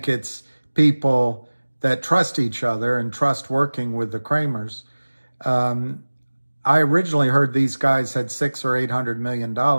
it's people that trust each other and trust working with the Kramers. I originally heard these guys had $600 or $800 million.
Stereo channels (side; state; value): both; inverted; correlation -1.00